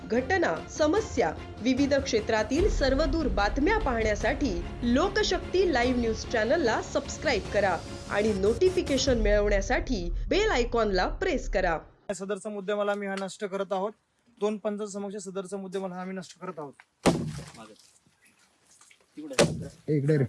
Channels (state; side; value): identical; both; correlation 1.00